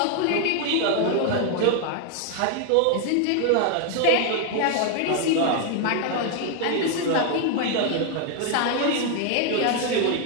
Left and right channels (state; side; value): different; both; correlation 0.00